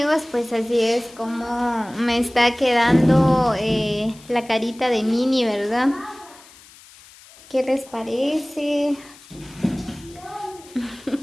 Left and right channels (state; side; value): noise; left; hiss, 23 dB below the sound